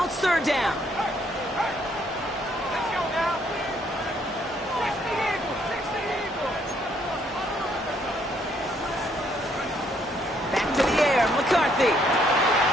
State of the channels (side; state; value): both; normal; correlation 0.69